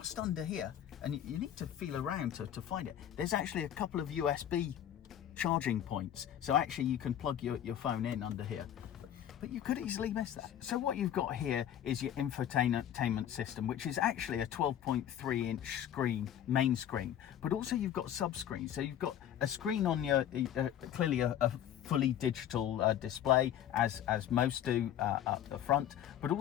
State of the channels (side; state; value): right; quieter; 10.6 dB